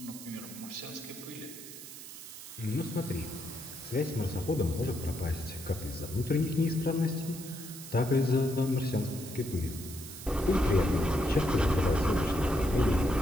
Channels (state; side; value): noise; right; hiss, 13 dB below the sound